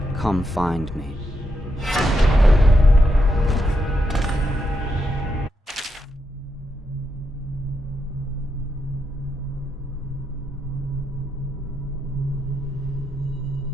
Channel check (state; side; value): normal; both; correlation 0.83